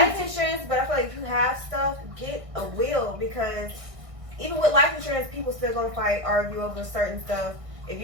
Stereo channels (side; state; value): left; late; 1.6 ms